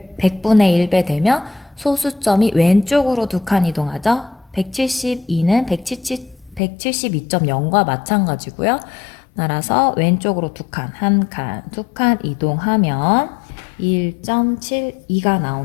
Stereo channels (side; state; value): right; drops out; at 6.6 s